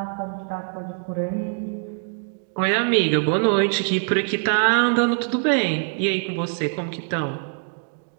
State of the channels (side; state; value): left; silent; 63 dB below the other